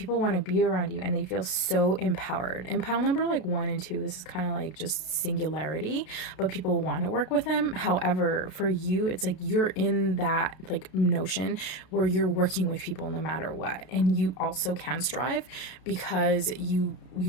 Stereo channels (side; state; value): right; late; 32 ms